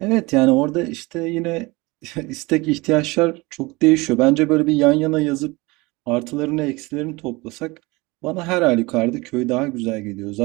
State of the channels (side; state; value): left; quieter; 23.5 dB